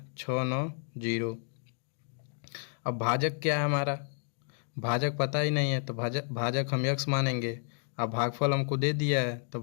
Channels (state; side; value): silent; right; 57 dB below the other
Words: 690। अब भाजक क्या है हमारा, भाजक पता ही नहीं है तो भाजक हम x मानेंगे। अब भागफल हमको दे दिया है तो